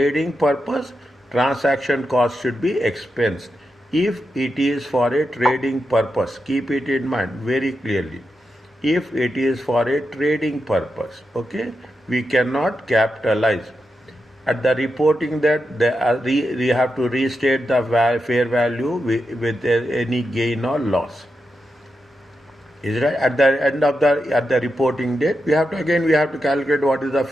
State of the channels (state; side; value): normal; both; correlation 0.88